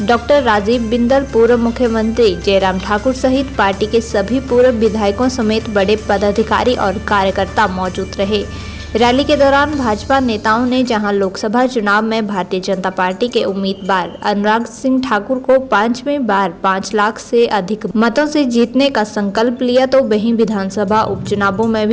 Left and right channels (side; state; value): both; identical; correlation 1.00